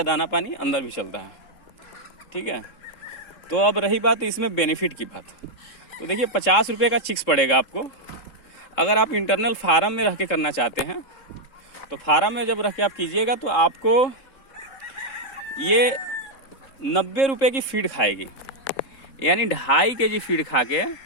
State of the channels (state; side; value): late; right; 3.7 ms